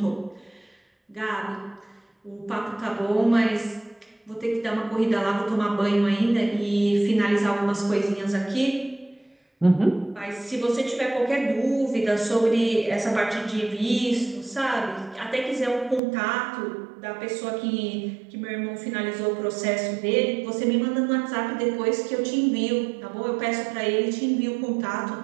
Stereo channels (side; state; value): left; drops out; at 16.0 s